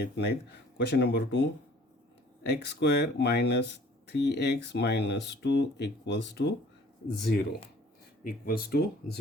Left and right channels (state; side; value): normal; both; correlation 0.53